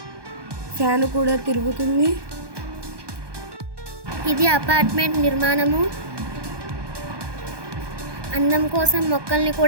ఫ్యాన్ కూడా తిరుగుతుంది. ఇది అపార్ట్మెంట్ నిర్మాణము. అందం కోసం మొక్కల్ని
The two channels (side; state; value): left; late; 1.2 ms